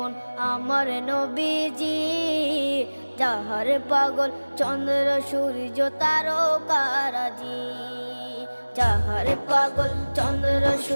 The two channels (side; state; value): both; inverted; correlation -1.00